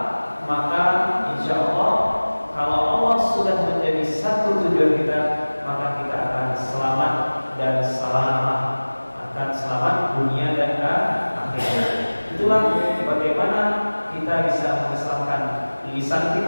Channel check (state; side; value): inverted; both; correlation -1.00